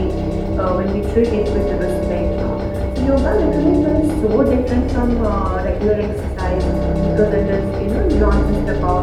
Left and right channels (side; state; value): both; identical; correlation 1.00